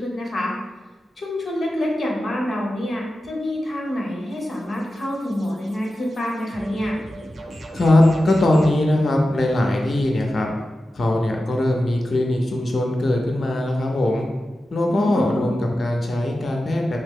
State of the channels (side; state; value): both; normal; correlation 0.93